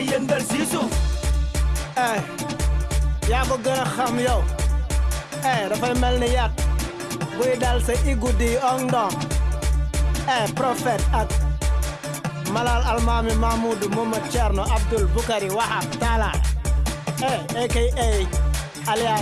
yëngal si suuf. yaa ko gën a xam yow. dafay mel ni yat buy dal sa igudi ong dong. Prophète ak Malal Almami Mahmoudou Momo Thierno Abdul Bukari Wahab Talla. aka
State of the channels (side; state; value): both; identical; correlation 1.00